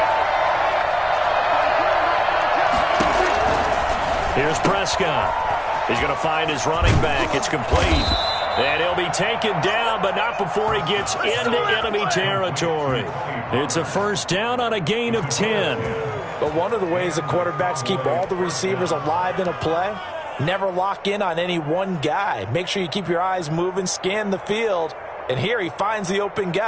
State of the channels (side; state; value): both; identical; correlation 1.00